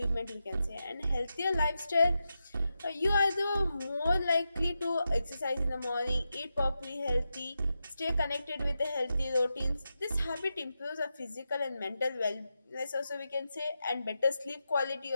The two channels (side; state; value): both; inverted; correlation -0.88